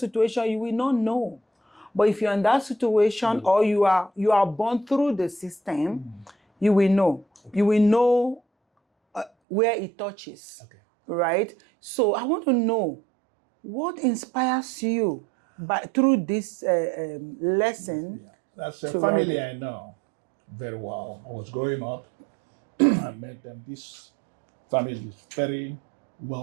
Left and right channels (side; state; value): left; drops out; at 9.3 s